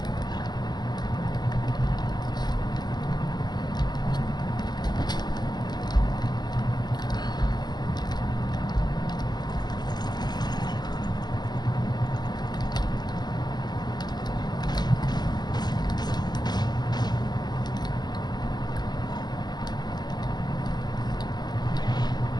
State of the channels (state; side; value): late; right; 0.20 ms